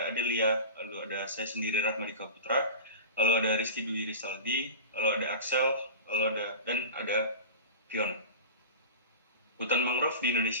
Adelia, lalu ada saya sendiri Rahmadika Putra, lalu ada Rizky Dwi Rizaldi, lalu ada Axel, dan ada Fiona. Hutan mangrove di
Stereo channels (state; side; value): inverted; both; correlation -0.32